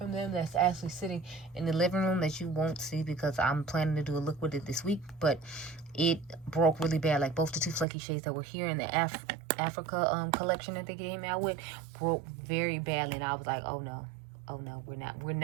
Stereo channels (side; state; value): left; drops out; at 7.9 s